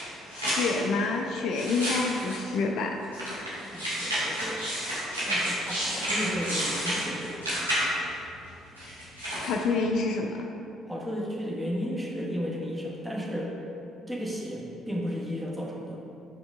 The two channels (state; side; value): normal; both; correlation 0.63